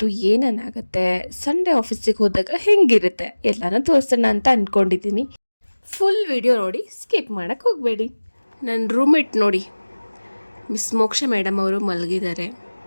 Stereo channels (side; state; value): both; inverted; correlation -1.00